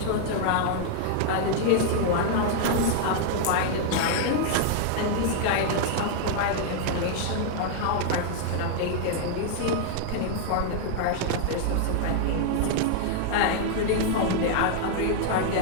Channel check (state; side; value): different; both; correlation 0.00